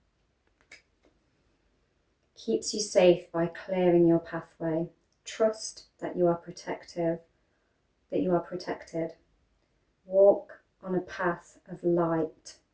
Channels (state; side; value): identical; both; correlation 1.00